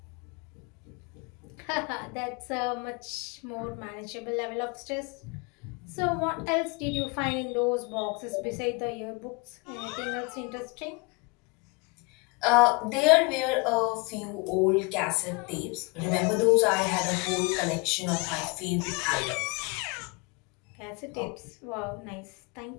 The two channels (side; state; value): right; quieter; 29.7 dB